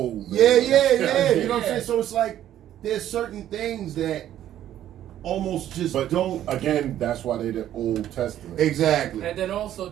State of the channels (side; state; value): left; quieter; 11.8 dB